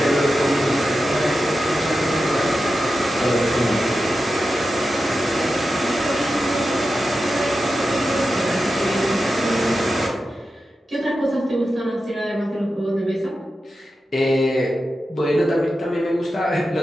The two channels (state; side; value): normal; both; correlation 0.91